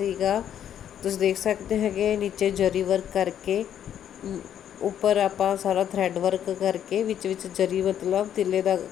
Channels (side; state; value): right; quieter; 9.8 dB